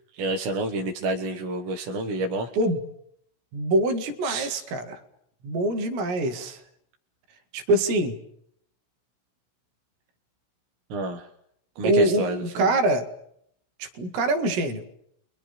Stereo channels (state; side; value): late; left; 16 ms